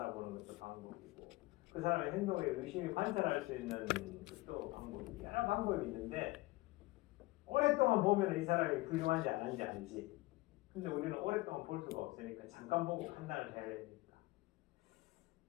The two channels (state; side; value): quieter; right; 20.8 dB